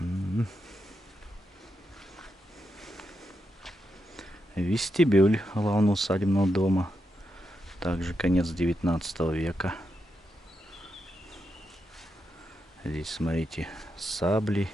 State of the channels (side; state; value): both; normal; correlation 0.85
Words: Вестибюль главного усадебного дома. Также конец 19 века. Здесь, смотрите, сабли,